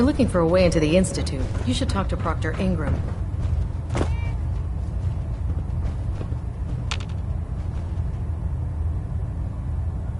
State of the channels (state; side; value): identical; both; correlation 1.00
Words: looking for a way into the Institute, you should talk to Proctor Ingram.